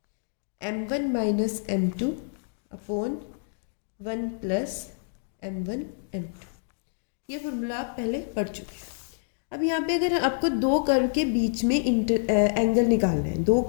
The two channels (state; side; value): silent; right; digital silence